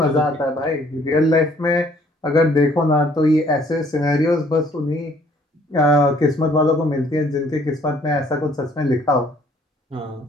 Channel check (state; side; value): normal; both; correlation 0.61